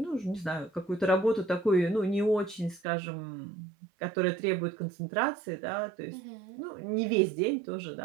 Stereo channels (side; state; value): left; drops out; at 2.8 s